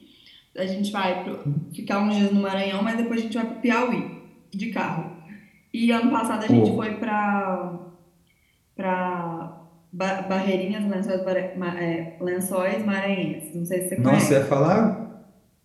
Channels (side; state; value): both; identical; correlation 1.00